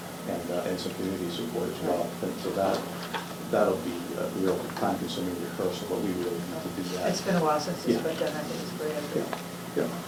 and some community support as well. And so that'll be a real time-consuming rehearsal, but we really need to do that. It's been a while since it's Yeah. been done. I think it's a great idea. Yeah.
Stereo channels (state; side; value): identical; both; correlation 1.00